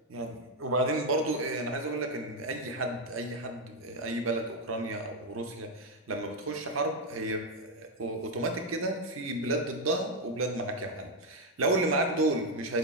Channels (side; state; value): both; normal; correlation 0.04